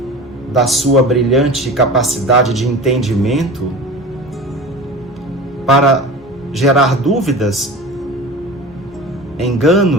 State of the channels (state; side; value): normal; both; correlation 0.35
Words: da sua brilhante capacidade de entendimento, para gerar dúvidas,